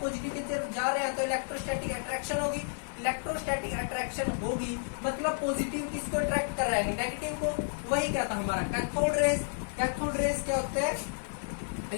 की तरफ जा रहे हैं तो इलेक्ट्रोस्टैटिक अट्रैक्शन होगी। इलेक्ट्रोस्टैटिक अट्रैक्शन होगी मतलब पॉजिटिव किसको अट्रैक्ट कर रहा है, नेगेटिव को। वही क्या था हमारा कैथोड रेज। कैथोड रेज क्या होते हैं?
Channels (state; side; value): silent; right; digital silence